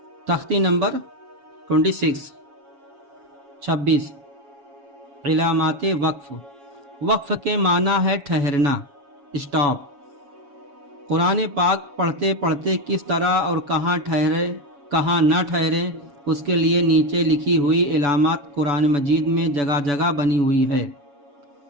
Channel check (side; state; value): left; late; 7.0 ms